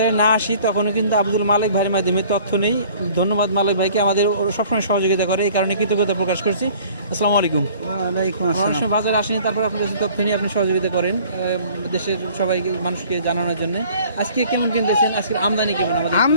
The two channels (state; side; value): inverted; both; correlation -0.52